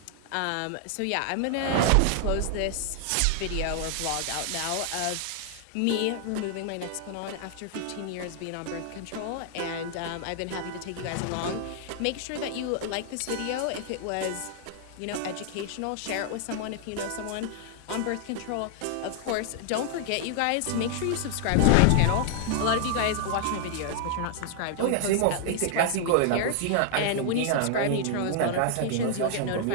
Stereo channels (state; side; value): different; both; correlation 0.00